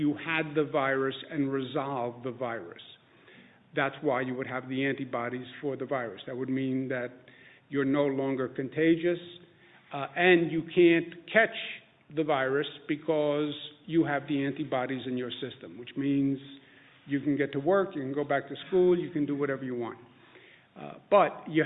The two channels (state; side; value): identical; both; correlation 1.00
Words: had the virus and resolved the virus. That's why you would have the antibodies for the virus. That would mean that you're no longer contagious, and you can't catch the virus because you have the antibodies in your system, which means you can get to work, you can go back to school, you can do whatever you want. But you